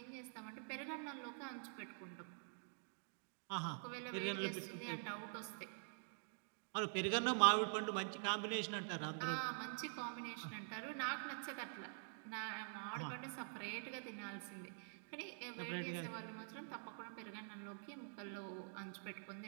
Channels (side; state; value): left; silent; digital silence